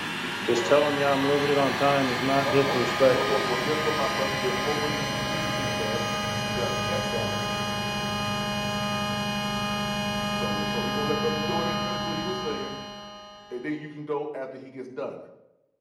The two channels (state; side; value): identical; both; correlation 1.00